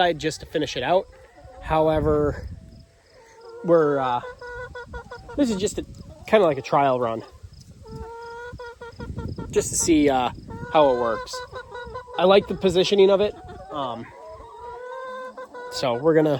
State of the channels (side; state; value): both; identical; correlation 1.00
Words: just to finish it out. However, this is just kind of like a trial run, just to see how it works. I like the positioning of it, so we're